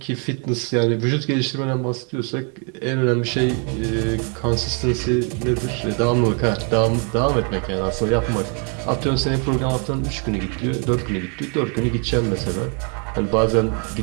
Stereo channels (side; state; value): left; quieter; 38.7 dB